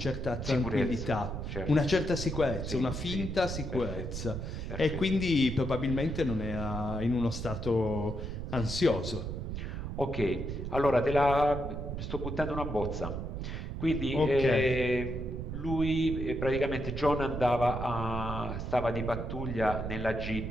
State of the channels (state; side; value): noise; right; rumble, 5 dB below the sound